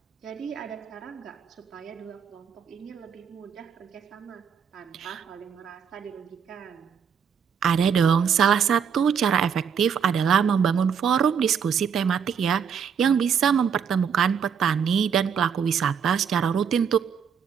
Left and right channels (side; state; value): left; quieter; 7.1 dB